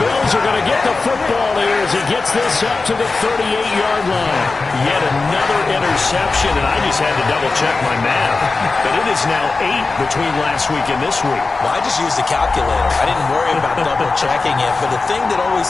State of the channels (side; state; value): right; quieter; 3.9 dB